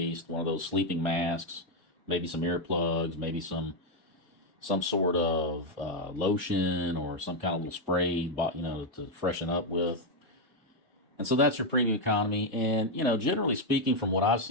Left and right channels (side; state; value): both; normal; correlation 0.02